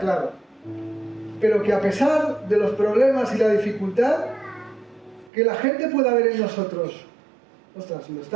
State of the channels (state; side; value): drops out; left; at 5.3 s